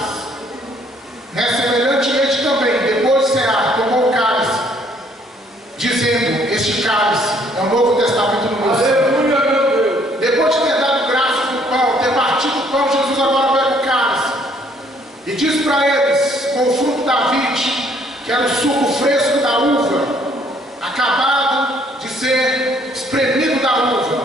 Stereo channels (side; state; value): both; normal; correlation 0.64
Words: semelhantemente também, depois de cear, tomou o cálice, dizendo: este cálice é o Novo Testamento no meu sangue. Aleluia, meu Deus. Depois de ter dado graças no pão, ter partido o pão, Jesus agora pega o cálice e diz para eles, com o fruto da vide, que era o suco fresco da uva, acabado de ser espremido da